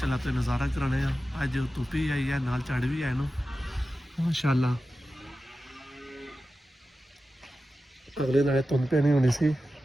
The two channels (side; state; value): both; normal; correlation 0.93